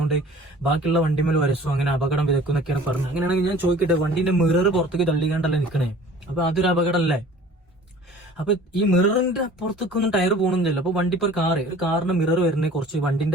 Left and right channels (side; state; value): both; normal; correlation 0.47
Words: ബാക്കിയുള്ള വണ്ടിമേൽ വരസും, അങ്ങനെ അപകടം വിതക്കുന്നൊക്കെയാണ് പറഞ്ഞത്. അങ്ങനെയാണെങ്കിൽ ഞാൻ ചോദിക്കട്ടെ, വണ്ടിന്റെ മിറർ പുറത്തേക്ക് തള്ളിക്കാണ്ടല്ലേ നിൽക്കണേ? അപ്പൊ അതൊരു അപകടമല്ലേ? അപ്പൊ ഈ മിററിന്റെ പുറത്തേക്കൊന്നും ടയർ പോകണമെന്നില്ല. അപ്പൊ വണ്ടി ഇപ്പൊ ഒരു കാറിന്റെ മിറർ വരുന്നത് കുറച്ച്